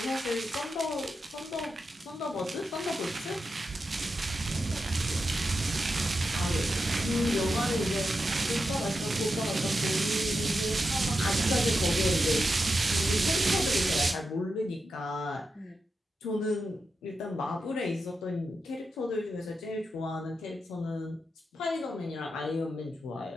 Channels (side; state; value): both; normal; correlation 0.88